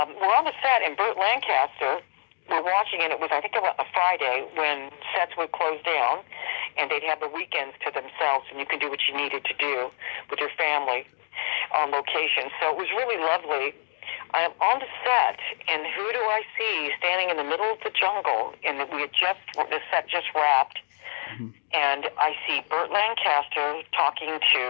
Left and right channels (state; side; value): silent; right; digital silence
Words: we're on the set, and Burt Lancaster, we're watching, and it was, I think, a Friday when sets would close down, and they'd have the weekends to themselves, and you could do what you needed to do with your family on location. So it was really lovely. I am on the set, and who do I see standing in the middle of the jungle? And the set just wrapped. And I see Burt Lancaster talking